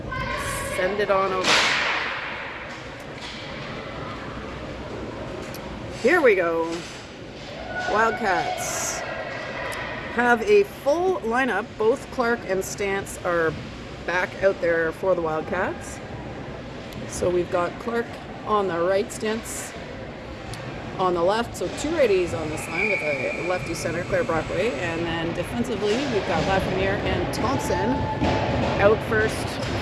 send it on over. Here we go. Wildcats have a full lineup. Both Clark and Stance are back out there for the Wildcats. So we've got Clark on the right, Stance on the left, so two righties on this line with a lefty center, Claire Brockway, and then defensively we've got Lafreniere and Thompson out first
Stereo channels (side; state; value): both; identical; correlation 1.00